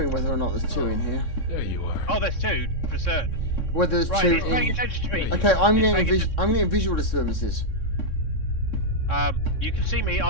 whether or not there's two in here. There you are. Oh, there's two, for certain. Whether there's Right, two it's paying in. attention to me. Okay, I'm It's getting paying I'm getting visual disturbances. You can see me,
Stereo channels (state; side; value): late; right; 3.6 ms